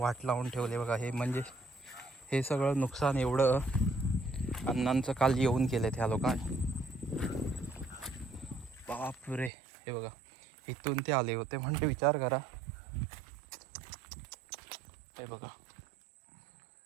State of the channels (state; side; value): drops out; left; at 9.5 s